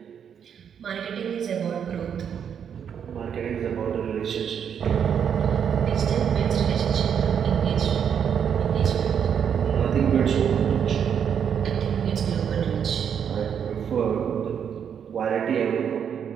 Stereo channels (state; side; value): quieter; left; 8.0 dB